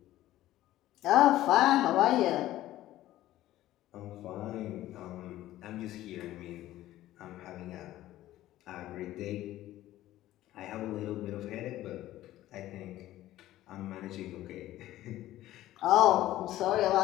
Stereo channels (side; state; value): right; quieter; 14.7 dB